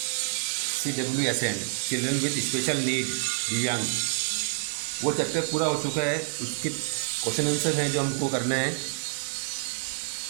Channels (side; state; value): left; silent; digital silence